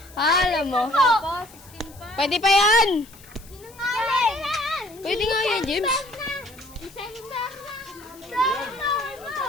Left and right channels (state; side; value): noise; left; hiss, 22 dB below the sound